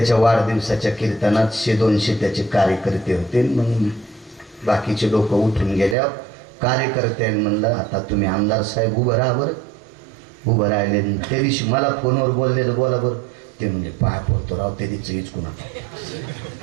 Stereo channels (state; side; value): drops out; left; at 6.0 s